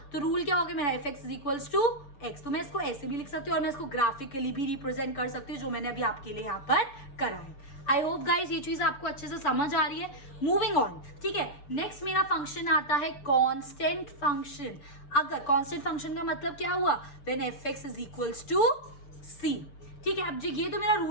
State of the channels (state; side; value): late; right; 6.9 ms